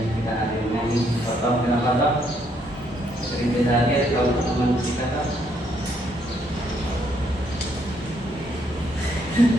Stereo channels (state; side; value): normal; both; correlation 0.71